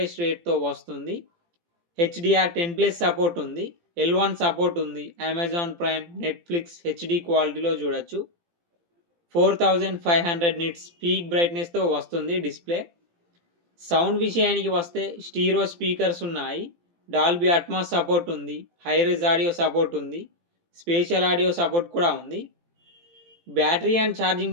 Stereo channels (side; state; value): left; late; 18 ms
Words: రేట్తో వస్తుంది. HDR10+ సపోర్ట్ ఉంది. L1 సపోర్ట్ ఉంది. అమెజాన్ ప్రైమ్, నెట్ఫ్లిక్స్ హెచ్డి క్వాలిటీలో చూడొచ్చు. 4500 నిట్స్ పీక్ బ్రైట్నెస్తో వస్తుంది డిస్ప్లే. సౌండ్ విషయానికి వస్తే స్టీరియో స్పీకర్స్ ఉన్నాయి. డాల్బీ అట్మాస్ సపోర్ట్ ఉంది. హైరెజ్ ఆడియో సపోర్ట్ ఉంది. స్పేషల్ ఆడియో సపోర్ట్ కూడా ఉంది. బ్యాటరీ అండ్